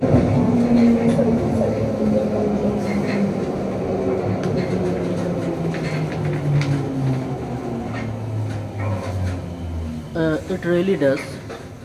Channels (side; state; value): both; identical; correlation 1.00